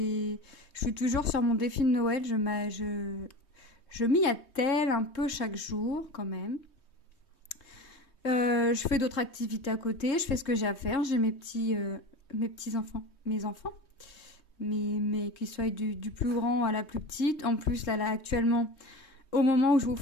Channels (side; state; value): right; late; 3.2 ms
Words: suis toujours sur mon défi de Noël. Je m'y attelle un peu chaque jour, quand même. Je fais d'autres activités à côté, je fais ce que j'ai à faire. J'ai mes petits enfants, mais qu'ils soient du plus grand à la plus petite. En plus, là actuellement, au moment où je vous